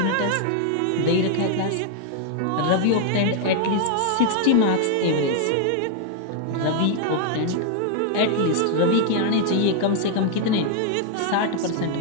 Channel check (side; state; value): both; different; correlation 0.00